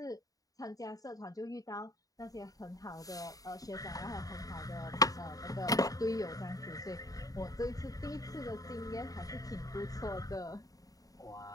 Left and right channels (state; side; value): late; right; 0.17 ms